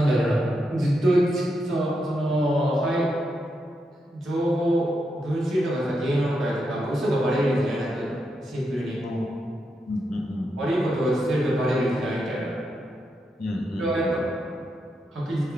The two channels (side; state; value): both; normal; correlation 0.84